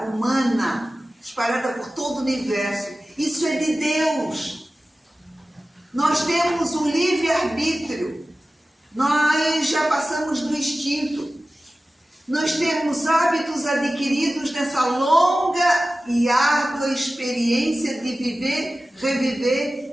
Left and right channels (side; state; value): both; normal; correlation 0.96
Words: humana, espalhada por todo o universo. Isso é de Deus. Nós temos um livre-arbítrio. Nós já passamos do instinto. Nós temos hábitos adquiridos nessa longa e árdua experiência de viver,